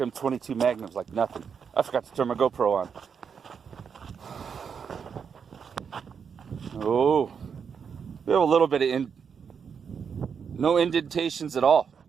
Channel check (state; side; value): quieter; left; 6.7 dB